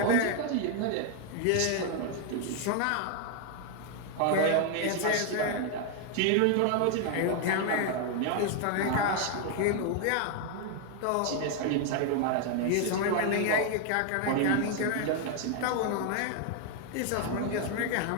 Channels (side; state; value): both; different; correlation 0.00